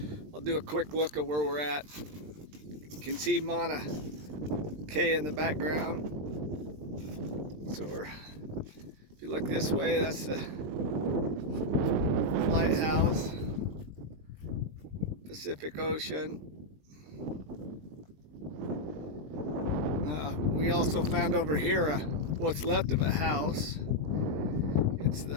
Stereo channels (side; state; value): left; late; 20 ms